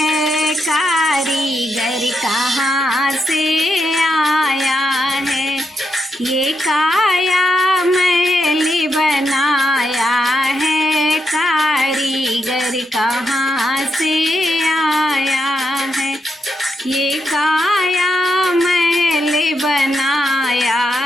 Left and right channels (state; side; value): normal; both; correlation 0.82